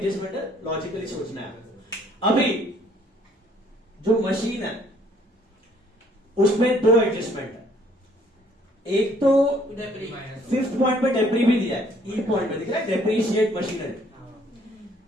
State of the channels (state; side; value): normal; both; correlation 0.62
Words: है, लॉजिकली सोचना है। अभी जो मशीन है उसमें दो एडजस्टमेंट है। एक तो फिफ्थ पॉइंट पे डेप्री भी दिया है, ई पॉइंट पे दिख रहा है डेप्रीशिएट मशीनरी,